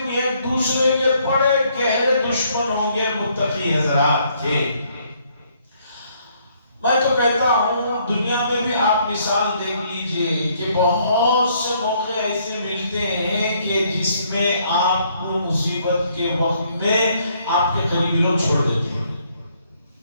ایک دوسرے کے بڑے گہرے دشمن ہوں گے متقی حضرات کے۔ میں تو کہتا ہوں دنیا میں بھی آپ مثال دیکھ لیجئے کہ بہت سے موقع ایسے ملتے ہیں کہ جس میں آپ کو مصیبت کے وقت میں آپ کے قریبی لوگ چھوڑ دیتے ہیں۔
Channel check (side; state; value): both; inverted; correlation -0.68